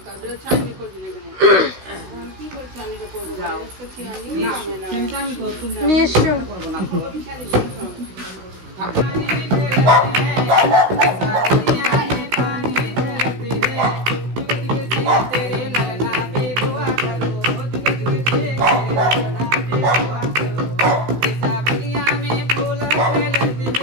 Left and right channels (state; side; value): late; left; 16 ms